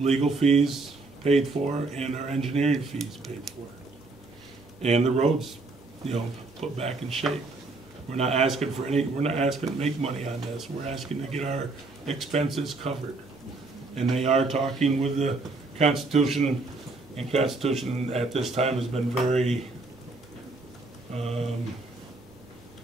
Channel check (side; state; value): left; quieter; 3.4 dB